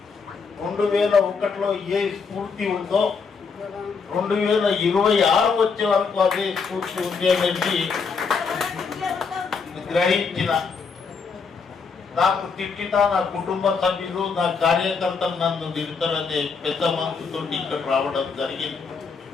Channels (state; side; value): quieter; right; 5.3 dB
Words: 2001లో ఏ స్ఫూర్తి ఉందో 2026 వచ్చే వరకు అదే స్ఫూర్తి ఉంది అనేది గ్రహించిన. నాకు తిట్టినా నా కుటుంబ సభ్యులు నా కార్యకర్తలు నన్ను తిడతారనే పెద్ద మనసుతో ఇక్కడ రావడం జరిగింది.